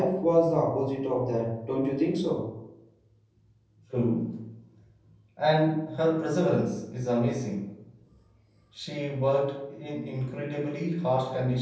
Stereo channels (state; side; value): identical; both; correlation 1.00